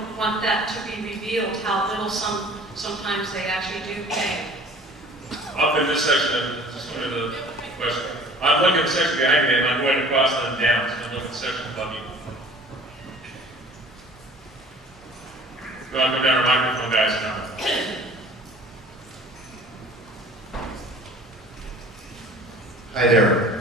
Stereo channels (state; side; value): normal; both; correlation 0.48